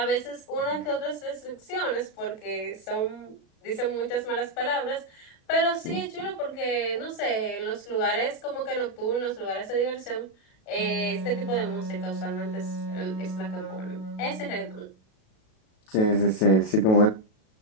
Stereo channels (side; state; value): right; late; 36 ms